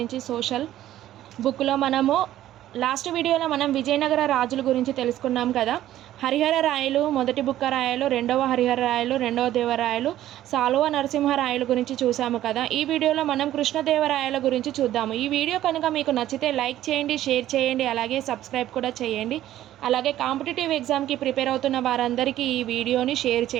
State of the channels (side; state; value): left; quieter; 13.2 dB